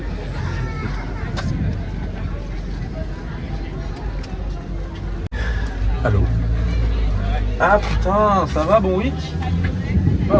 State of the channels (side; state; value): both; identical; correlation 1.00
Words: Allô? Ah putain, ça va, bon week?